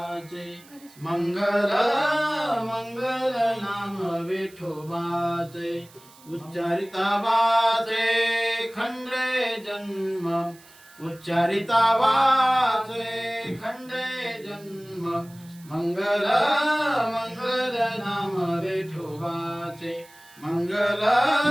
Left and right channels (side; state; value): right; noise; hiss, 24 dB below the sound